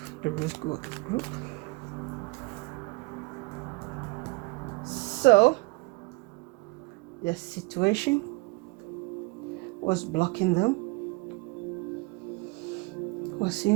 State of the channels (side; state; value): left; quieter; 26.7 dB